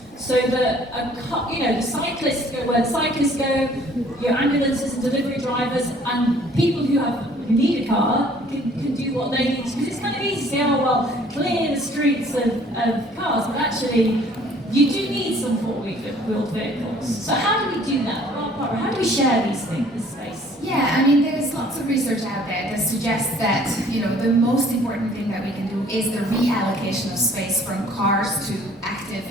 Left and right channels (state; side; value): normal; both; correlation 0.56